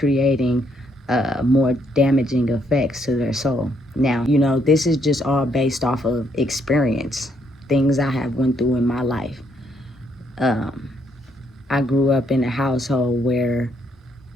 more damaging effects to their soul. Now, this is just all based off of experience, things I have went through in my life. I grew up in a household where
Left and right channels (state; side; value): normal; both; correlation 0.72